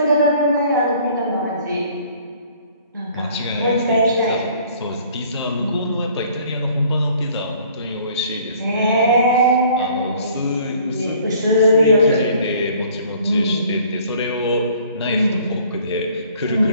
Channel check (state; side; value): inverted; both; correlation -0.55